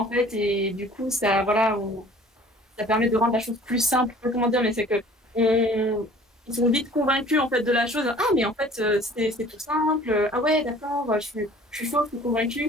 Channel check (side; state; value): both; normal; correlation 0.50